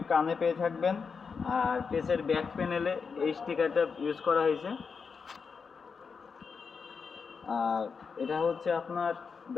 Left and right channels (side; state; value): right; quieter; 5.5 dB